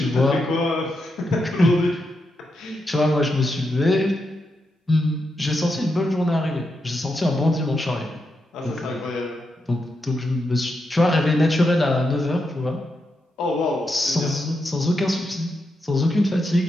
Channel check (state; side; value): normal; both; correlation 0.84